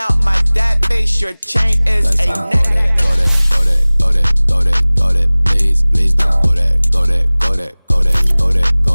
my dad face, your chain is a neck. Go that, go that, go that, go that, go that. Please, please don't go that, go that, go that, go that, go that,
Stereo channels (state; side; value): inverted; both; correlation -1.00